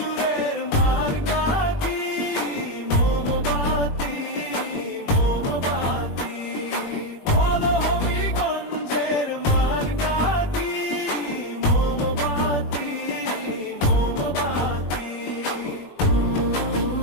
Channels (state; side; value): late; right; 20 ms